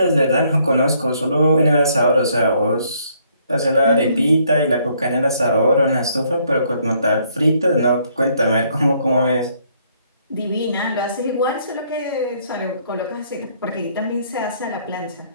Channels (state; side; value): inverted; both; correlation -0.68